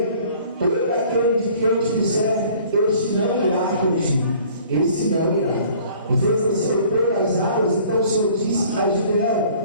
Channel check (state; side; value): inverted; both; correlation -0.53